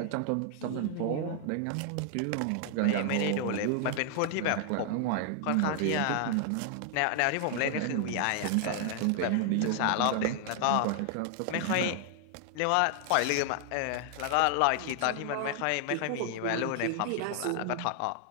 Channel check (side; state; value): both; different; correlation 0.00